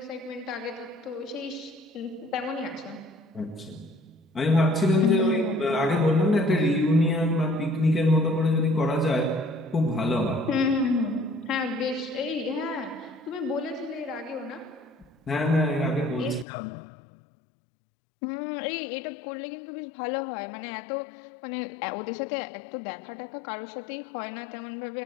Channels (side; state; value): right; drops out; at 16.4 s